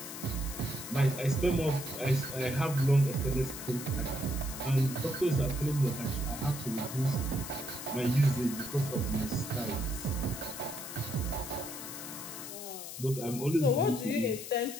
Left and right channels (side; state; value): left; noise; hiss, 9 dB below the sound